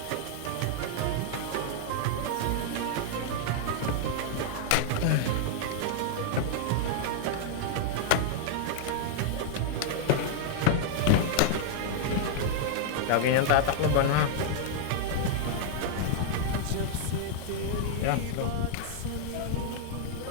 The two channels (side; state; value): both; different; correlation -0.01